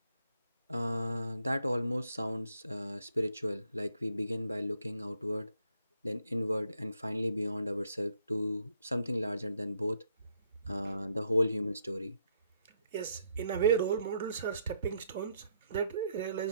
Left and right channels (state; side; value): inverted; both; correlation -0.72